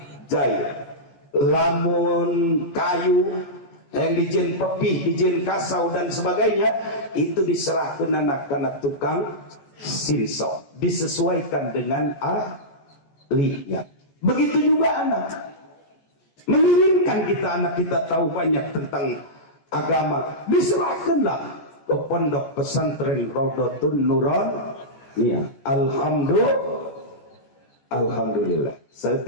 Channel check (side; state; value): right; late; 14 ms